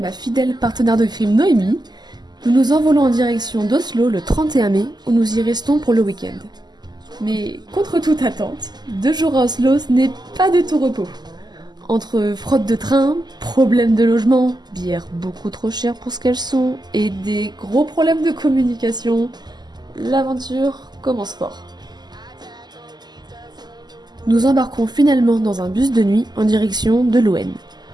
fidèle partenaire de crime Noémie, nous nous envolons en direction d'Oslo le 31 mai où nous y restons pour le week-end. Mais contre toute attente, 2 jours à Oslo ce n'est pas de tout repos. Entre fraude de train, problèmes de logement, bières beaucoup trop chères pour ce qu'elles sont, et des gros problèmes de communication, l'aventure commence fort. Nous embarquons finalement dans un bus de nuit en direction de Loen.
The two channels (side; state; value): left; late; 0.21 ms